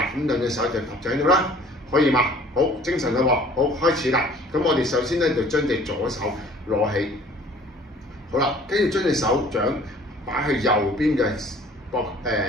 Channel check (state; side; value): normal; both; correlation 0.52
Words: 咁兩隻手就搭喺度啦，可以嘛？好，精神啦喎，好，開始啦。咁我哋首先咧就將隻左手攞起，好啦，跟住將隻手掌擺去右邊嘅